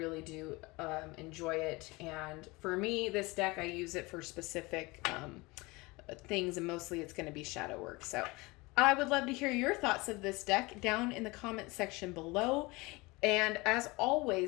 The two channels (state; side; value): quieter; right; 23.8 dB